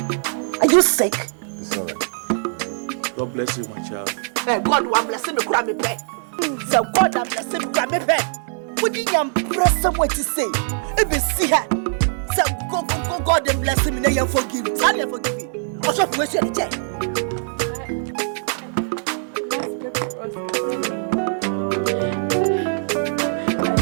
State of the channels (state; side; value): silent; left; digital silence